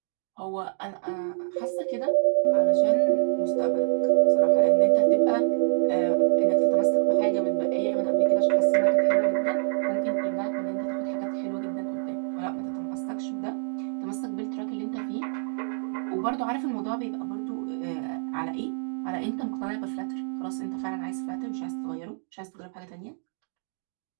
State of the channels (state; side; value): silent; left; digital silence